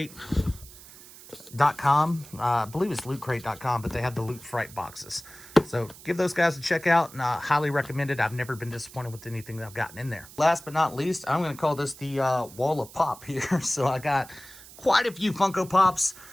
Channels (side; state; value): right; noise; hiss, 19 dB below the sound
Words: .com. I believe it's lootcrate.com, but they have the Loot Fright boxes. So give those guys a check out, and I highly recommend it. I've never been disappointed with anything that I've gotten in there. Last but not least, I'm going to call this the wall of pop here. So I got quite a few Funko Pops,